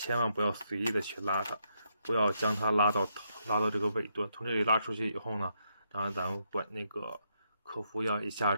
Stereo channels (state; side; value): inverted; both; correlation -0.77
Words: 万不要随意的去拉它，不要将它拉到这个尾端。从这里拉出去以后呢，当然咱们管那个客服要一下